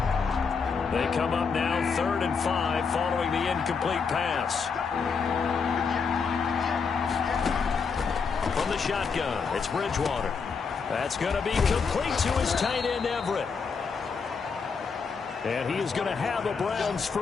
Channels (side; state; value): right; quieter; 5.5 dB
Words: They come up now 3rd and 5 following the incomplete pass. From the shotgun, it's Bridgewater. That's going to be complete to his tight end, Everett. And he is going to have a Browns